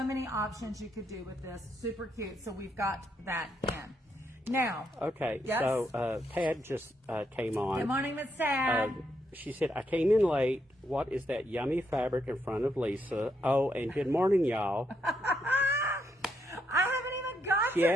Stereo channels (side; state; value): both; normal; correlation 0.78